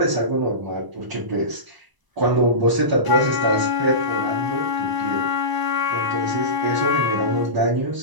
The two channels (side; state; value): left; late; 1.0 ms